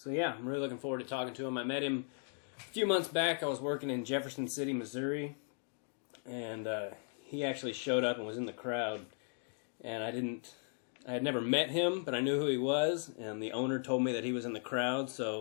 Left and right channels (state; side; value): silent; right; 53 dB below the other